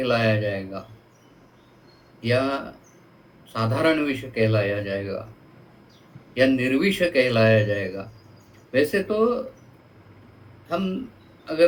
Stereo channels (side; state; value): both; identical; correlation 1.00